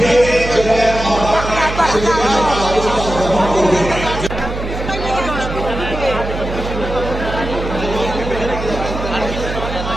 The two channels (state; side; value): noise; right; hum, 6 dB below the sound